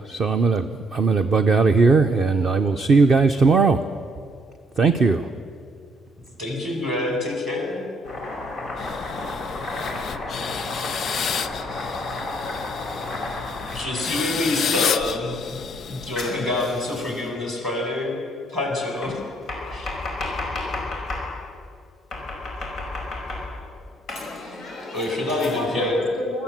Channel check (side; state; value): both; normal; correlation 0.68